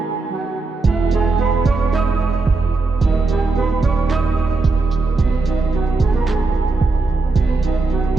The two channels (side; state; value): left; quieter; 3.5 dB